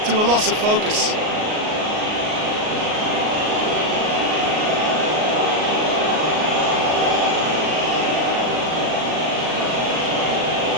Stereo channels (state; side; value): late; left; 38 ms